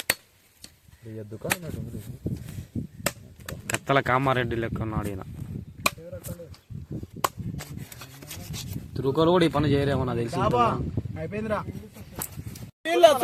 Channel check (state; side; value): identical; both; correlation 1.00